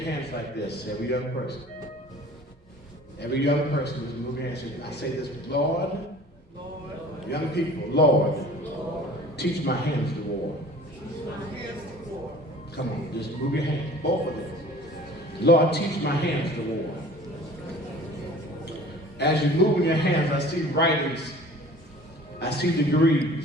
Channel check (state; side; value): normal; both; correlation 0.46